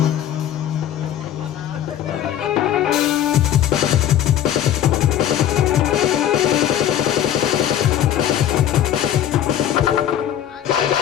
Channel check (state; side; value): quieter; right; 10.9 dB